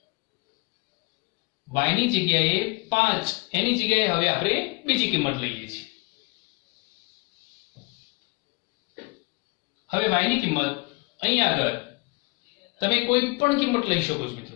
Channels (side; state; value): right; quieter; 29.2 dB